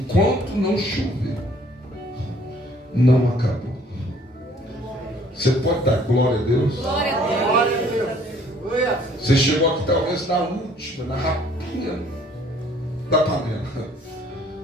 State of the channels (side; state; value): both; normal; correlation 0.59